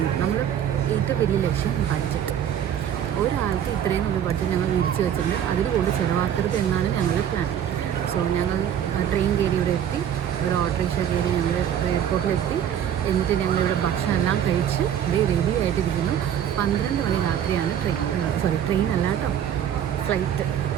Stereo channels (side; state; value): left; quieter; 9.7 dB